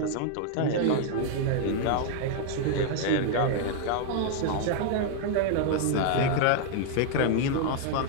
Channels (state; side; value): different; both; correlation 0.00